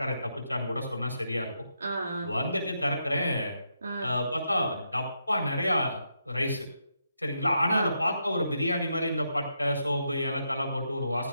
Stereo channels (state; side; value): inverted; both; correlation -0.81